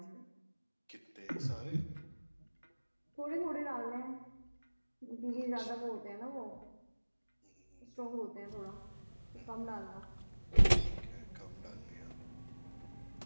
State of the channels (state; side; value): inverted; both; correlation -1.00